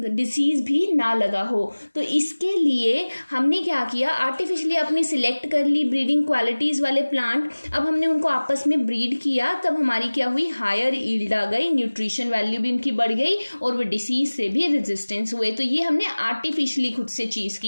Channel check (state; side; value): inverted; both; correlation -1.00